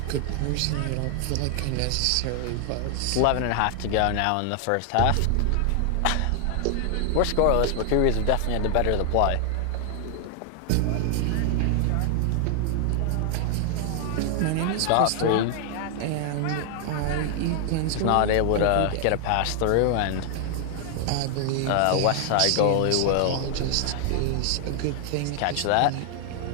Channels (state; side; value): different; both; correlation 0.00